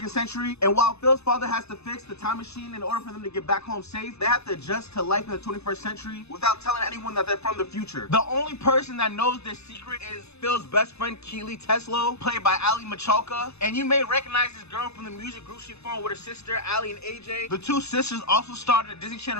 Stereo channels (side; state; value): right; late; 0.80 ms